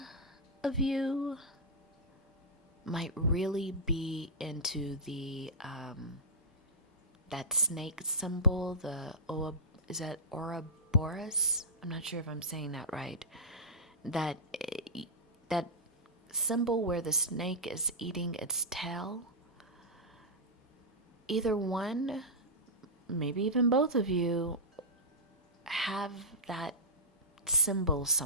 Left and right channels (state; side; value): normal; both; correlation -0.12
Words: of you might really be into the that snake symbol, is that Ouroboros? I'm not sure if I'm saying that right. That symbol where the snake is eating its tail. Either one, maybe even both of you, have that symbol